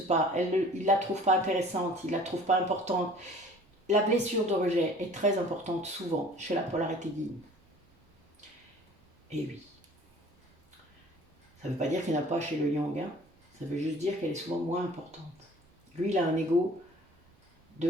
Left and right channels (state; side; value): normal; both; correlation 0.49